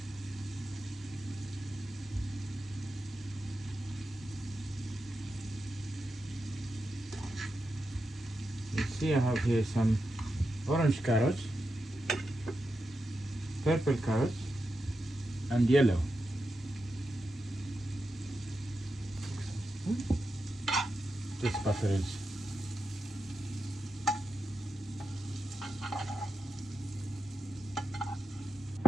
You see, I have here some orange carrots, purple carrots, and yellow. This butter is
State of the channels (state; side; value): normal; both; correlation 0.88